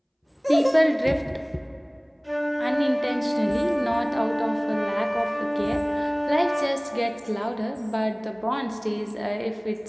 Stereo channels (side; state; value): both; identical; correlation 1.00